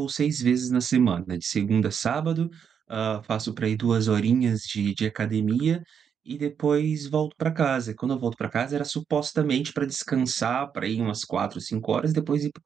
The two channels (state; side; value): quieter; left; 7.5 dB